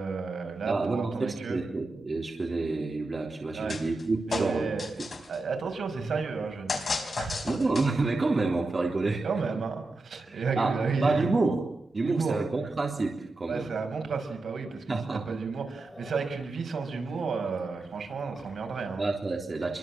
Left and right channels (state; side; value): quieter; left; 3.1 dB